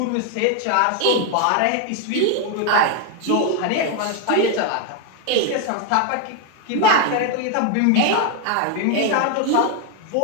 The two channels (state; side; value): different; both; correlation 0.01